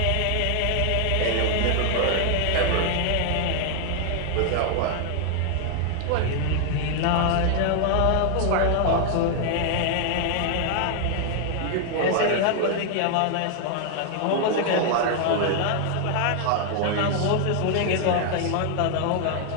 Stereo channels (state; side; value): different; both; correlation 0.00